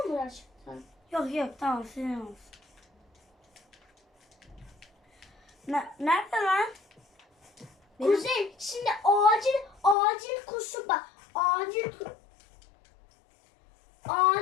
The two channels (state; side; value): drops out; right; at 10.0 s